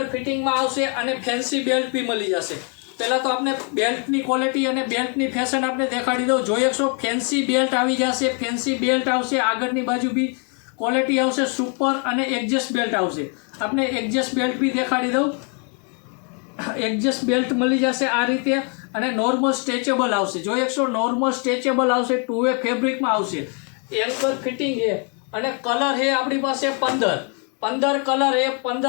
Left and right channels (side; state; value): right; quieter; 38.5 dB